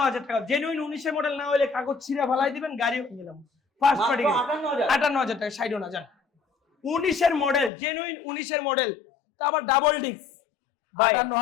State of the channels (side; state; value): right; drops out; at 7.7 s